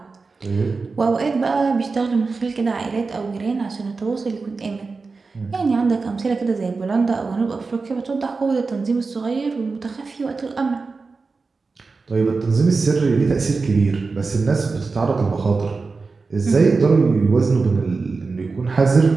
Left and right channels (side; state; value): left; quieter; 4.2 dB